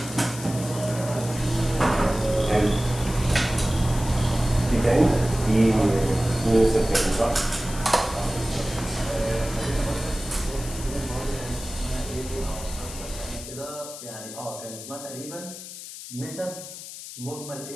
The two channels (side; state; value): left; noise; hiss, 12 dB below the sound